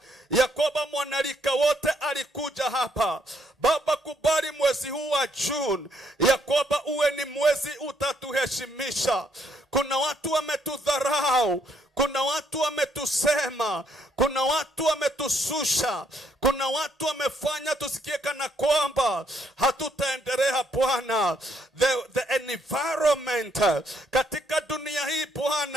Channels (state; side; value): normal; both; correlation 0.71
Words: ya kwamba mwanalika wote alikuja hapa. Baba, kubali mwezi huu wa June ya kwamba uwe ni mwezi utatuheshimisha. Kuna watu wametudharau, kuna watu wametusema, kuna watu wametususha, kuna watu wamefanya tusikie kana kwamba hatutaendelea Bwana. The environment katika dunia hii